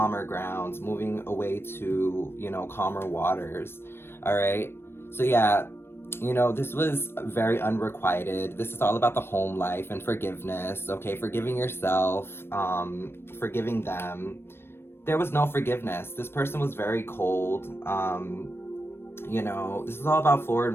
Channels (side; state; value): right; late; 0.12 ms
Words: grounds, moving away to, calmer waters, all right? So yeah, this was very unrequited. This is all about the home life and forgiveness, okay? Forgiving yourself, forgiving them. There was no forgiveness. This person was very cold. This is all about forward